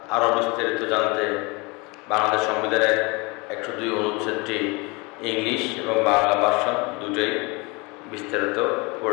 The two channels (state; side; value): quieter; right; 26.5 dB